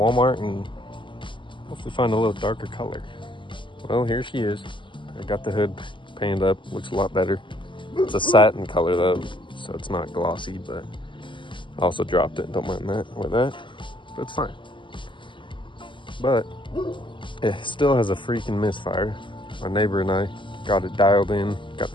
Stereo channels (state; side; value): late; right; 0.24 ms